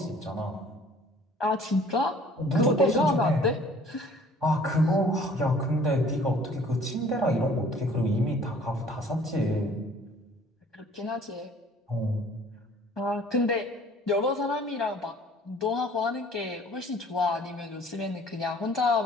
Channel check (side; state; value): both; normal; correlation 0.53